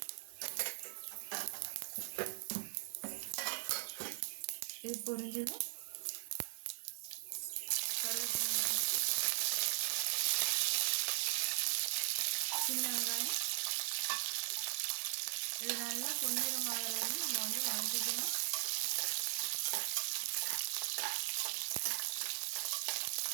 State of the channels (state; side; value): silent; left; digital silence